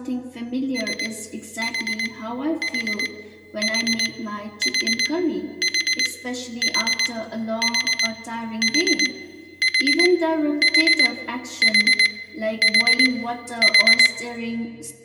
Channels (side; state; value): both; identical; correlation 1.00